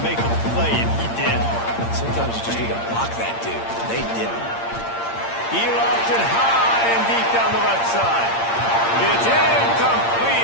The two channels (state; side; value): late; right; 8.7 ms